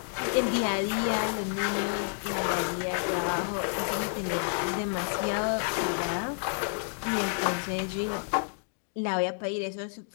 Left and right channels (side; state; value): right; silent; digital silence